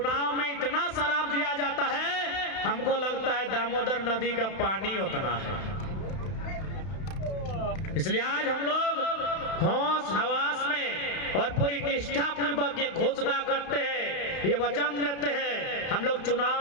में इतना शराब दिया जाता है, हमको लगता है दामोदर नदी का पानी उतना है। इसलिए आज हम लोग होश हवास में और पूरी निष्ठा पूर्वक ये घोषणा करते हैं, ये वचन देते हैं, हम लोग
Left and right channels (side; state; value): right; late; 32 ms